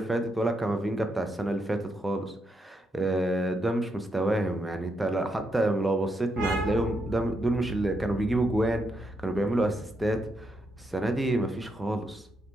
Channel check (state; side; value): normal; both; correlation 0.80